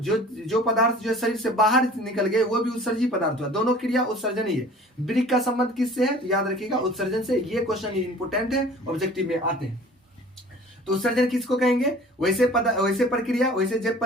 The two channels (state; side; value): normal; both; correlation 0.46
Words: पदार्थ जो शरीर से बाहर निकल गए वो भी उत्सर्जी पदार्थ हुआ। दोनों क्रिया उत्सर्जन ही है। ब्रिक का संबंध किससे है? तो याद रखिएगा उत्सर्जन से। ये क्वेश्चन इंपोर्टेंट है, ऑब्जेक्टिव में आते हैं। तो उत्सर्जन किसको कहेंगे? वैसे प्रक्रिया, वैसे जैव